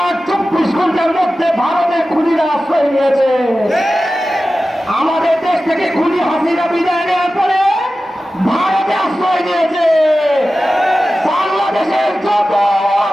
24 ঘন্টার মধ্যে ভারতের খুনিরা আশ্রয় নিয়েছে। আমাদের দেশ থেকে খুনি হাসিনা বিদায় নেওয়ার পরে ভারতে আশ্রয় নিয়েছে। বাংলাদেশের যত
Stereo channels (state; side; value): normal; both; correlation 0.94